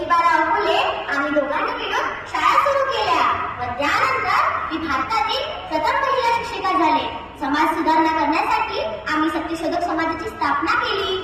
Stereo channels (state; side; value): identical; both; correlation 1.00